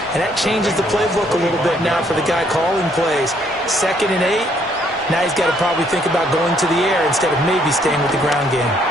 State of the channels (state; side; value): normal; both; correlation 0.68